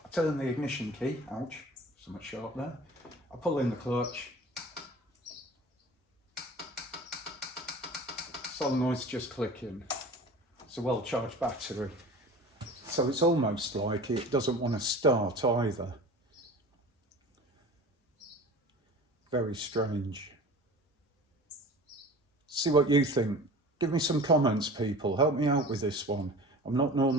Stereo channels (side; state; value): both; normal; correlation 0.39